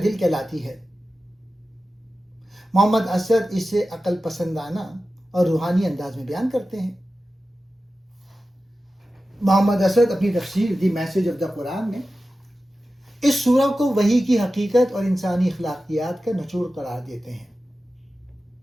دل کہلاتی ہے۔ محمد اسد اسے عقل پسندانہ اور روحانی انداز میں بیان کرتے ہیں۔ محمد اسد اپنی تفسیر دی میسج آف دا قرآن میں اس سورہ کو وحی کی حقیقت اور انسانی اخلاقیات کا نچوڑ قرار دیتے ہیں۔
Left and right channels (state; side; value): normal; both; correlation 0.94